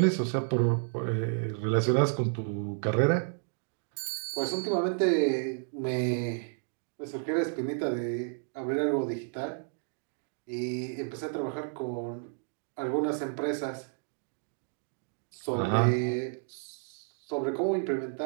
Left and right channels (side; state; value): left; silent; 57 dB below the other